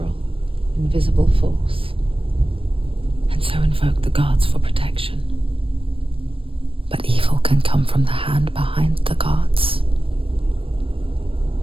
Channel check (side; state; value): left; late; 0.26 ms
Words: invisible force, and so invoke the gods for protection. But evil can come from the hand behind the gods.